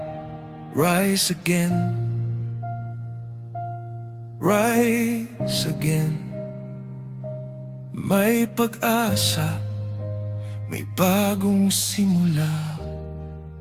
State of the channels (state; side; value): identical; both; correlation 1.00